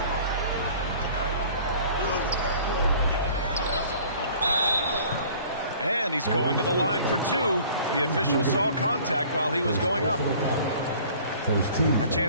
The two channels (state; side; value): inverted; both; correlation -0.50